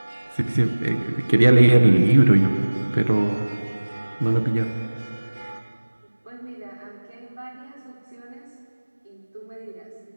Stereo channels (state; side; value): inverted; both; correlation -1.00